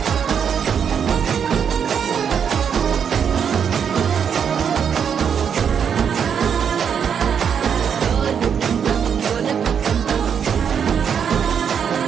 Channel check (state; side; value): quieter; left; 7.5 dB